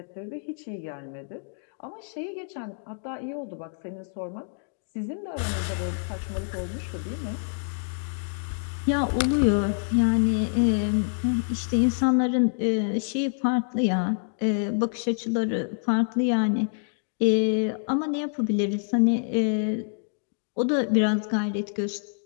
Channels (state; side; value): silent; right; digital silence